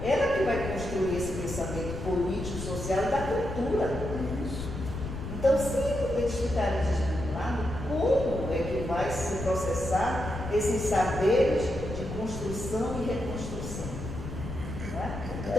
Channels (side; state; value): left; noise; rumble, 8 dB below the sound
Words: ela que vai construir esse pensamento político, social e da cultura. Então, se eles ficarem desvinculados, como é que vai se processar esses saberes de construção e reconstrução? Não é?